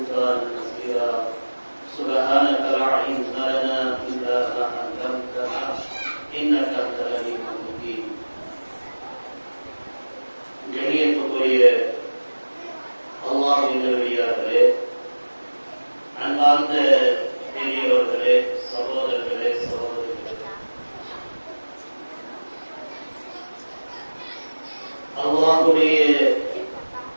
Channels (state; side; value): inverted; both; correlation -1.00